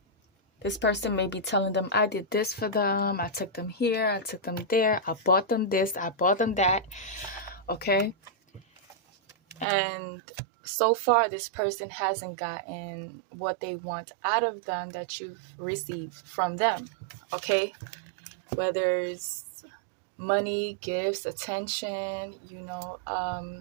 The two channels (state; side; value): drops out; left; at 9.7 s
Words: this person may be telling them, I did this for them, I took them here, I took them there, I bought them this, I bought them that. Okay, and so far this person hasn't gotten what they want out of them that you've received from them. Okay, whether it's money, gifts, attention,